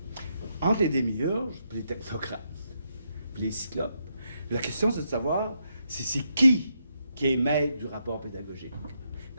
Entre les démiurges, puis les technocrates, puis les cyclopes, la question c'est de savoir c'est qui est maître du rapport pédagogique.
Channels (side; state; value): both; inverted; correlation -0.80